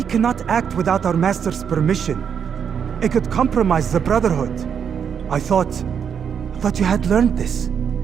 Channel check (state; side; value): quieter; left; 7.5 dB